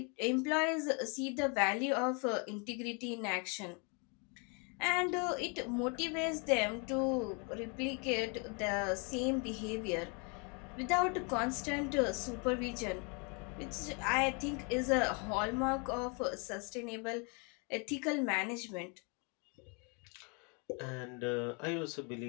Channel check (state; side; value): quieter; right; 34.4 dB